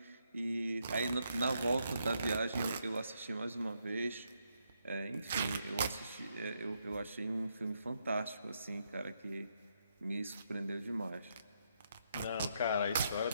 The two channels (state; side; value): inverted; both; correlation -0.78